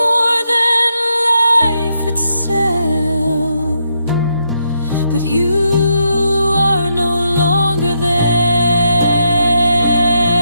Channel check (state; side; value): inverted; both; correlation -0.79